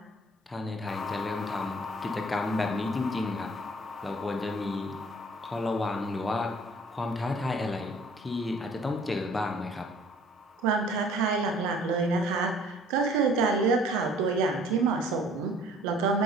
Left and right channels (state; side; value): normal; both; correlation 0.54